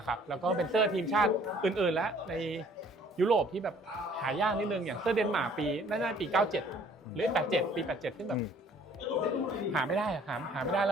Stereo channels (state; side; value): normal; both; correlation 0.57